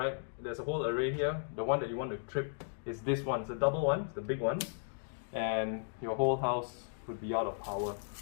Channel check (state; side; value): silent; right; digital silence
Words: there's a whole array here. The one that you want to trip is this one. It's a double one, it's the big one. And your whole house would be out of power.